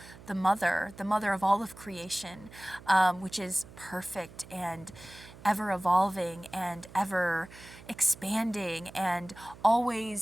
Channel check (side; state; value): right; noise; hum, 19 dB below the sound